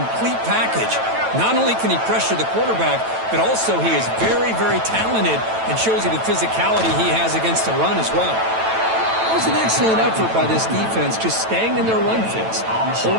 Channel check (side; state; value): left; late; 9.1 ms